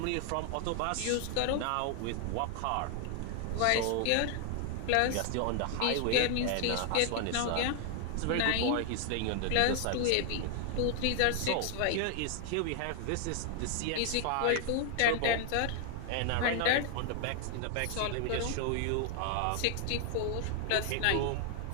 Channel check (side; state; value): both; different; correlation 0.00